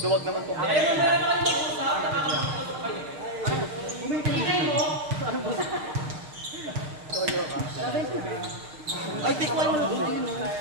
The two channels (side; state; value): left; late; 6.5 ms